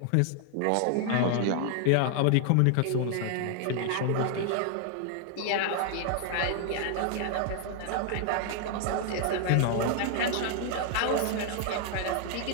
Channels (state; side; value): different; both; correlation 0.00